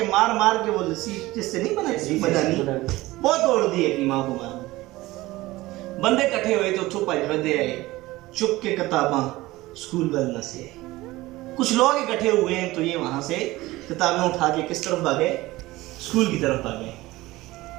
मार मार के वो लस्सी जिससे नहीं बनाई मदानी वो तोड़ दी अपनी मां को मार। बंदे इकट्ठे हुए तो चुप बंदे आए, चुप के किताबां स्कूल बदलना से आए। कुछ लोग इकट्ठे हुए हैं तो ये वहां से किताबें उठा के किस तरफ भागे, स्कूल की तरफ भागे।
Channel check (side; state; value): left; quieter; 18.8 dB